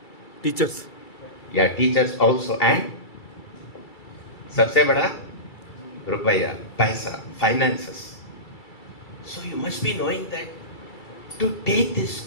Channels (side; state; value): right; late; 2.3 ms